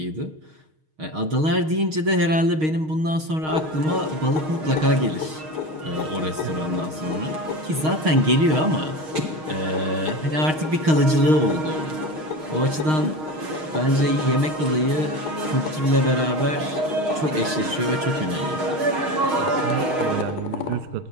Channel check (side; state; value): left; late; 6.4 ms